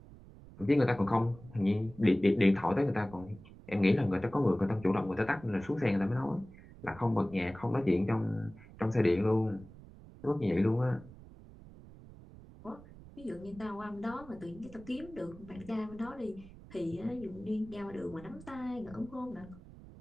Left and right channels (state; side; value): noise; right; rumble, 19 dB below the sound